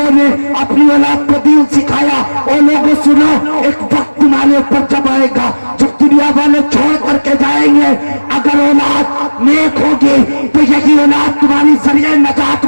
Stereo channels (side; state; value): both; inverted; correlation -1.00